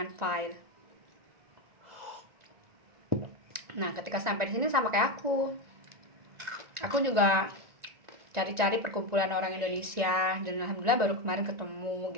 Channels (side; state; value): left; late; 1.9 ms